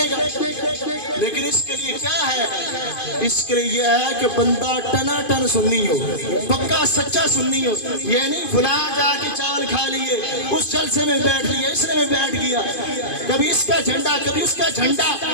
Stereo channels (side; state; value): right; late; 2.5 ms